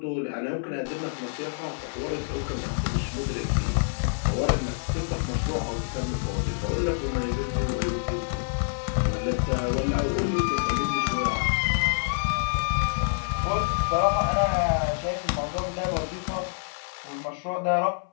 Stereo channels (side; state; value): right; silent; 60 dB below the other